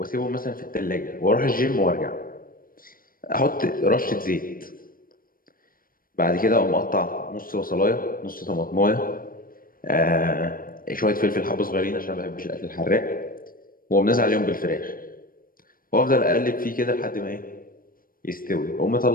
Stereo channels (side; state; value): right; late; 0.41 ms